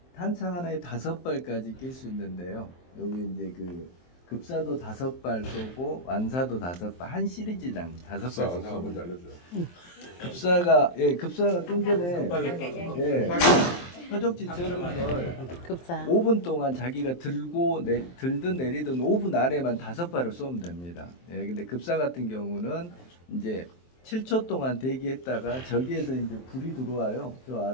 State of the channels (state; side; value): late; right; 23 ms